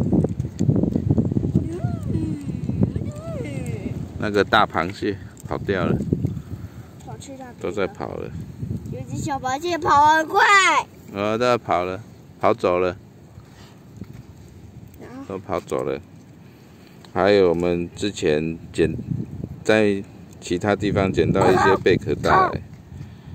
那个大螃蟹跑掉了，跑去那边都在跑了。有只小螃蟹跑很快。都在跑了，跑走了，都跑走了。还有我们之前在其他地方捡到一些贝壳带来，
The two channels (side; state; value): both; identical; correlation 1.00